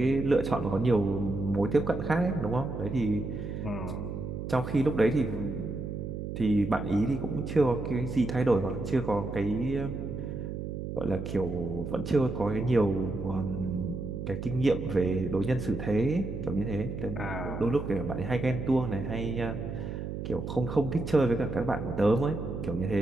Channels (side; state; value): right; noise; hum, 6 dB below the sound